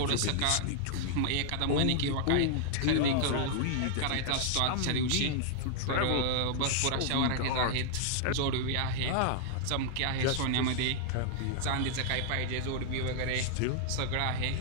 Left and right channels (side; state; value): both; different; correlation -0.01